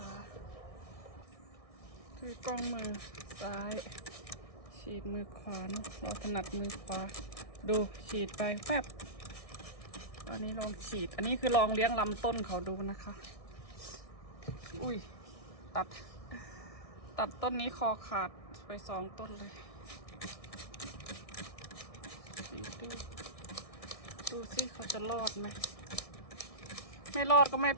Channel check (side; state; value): right; late; 1.6 ms